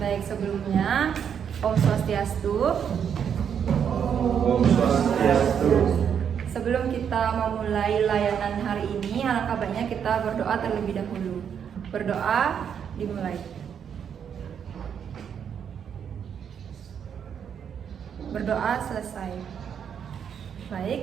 Baik, sebelumnya Om Swastiastu. Om Swastiastu. Sebelum kita memulai layanan hari ini, alangkah baiknya kita berdoa terlebih dahulu. Berdoa dimulai. Berdoa selesai.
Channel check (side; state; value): left; quieter; 7.9 dB